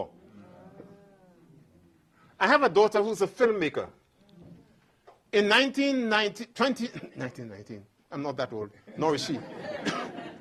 I have a daughter who's a filmmaker. In 1919, I'm not that old, nor is she.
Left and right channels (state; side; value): identical; both; correlation 1.00